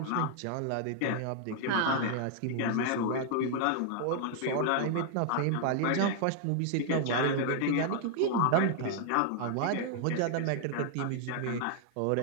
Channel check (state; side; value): different; both; correlation 0.00